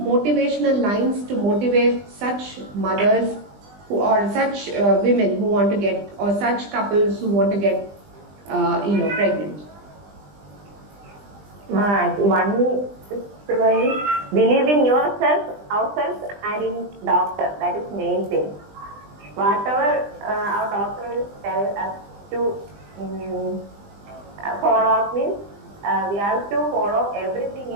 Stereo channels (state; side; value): late; left; 20 ms